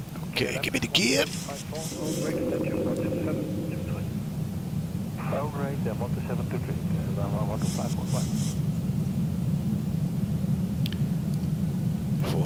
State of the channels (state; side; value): identical; both; correlation 1.00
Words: Okay, give me the gear. All right, then 12723, 12515.